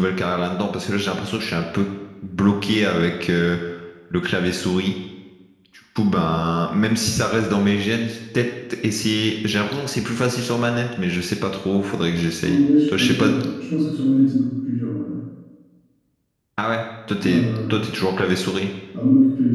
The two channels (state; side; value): identical; both; correlation 1.00